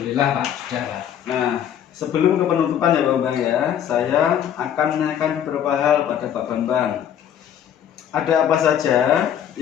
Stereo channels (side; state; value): right; quieter; 9.6 dB